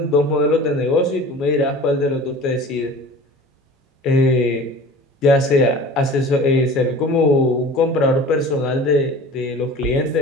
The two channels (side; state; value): both; normal; correlation 0.41